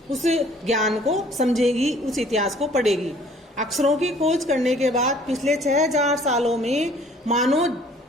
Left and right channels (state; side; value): normal; both; correlation 0.55